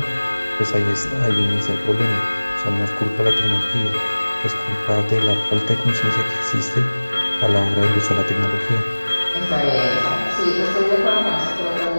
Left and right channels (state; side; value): inverted; both; correlation -1.00